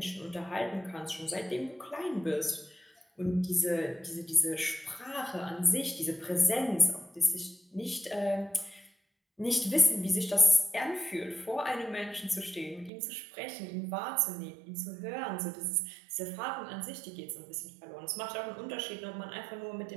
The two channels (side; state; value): left; drops out; at 12.9 s